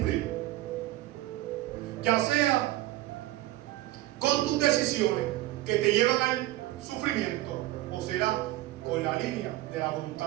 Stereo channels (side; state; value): left; quieter; 16.3 dB